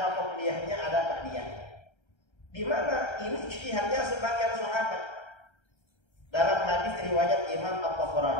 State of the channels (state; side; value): late; right; 1.3 ms